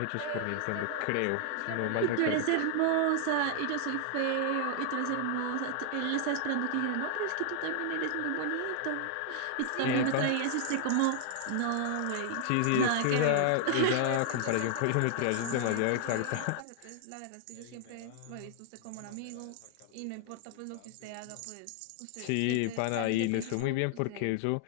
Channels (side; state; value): both; different; correlation 0.00